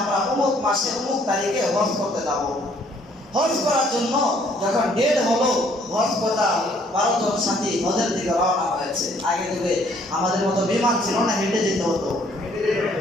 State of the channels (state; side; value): normal; both; correlation 0.63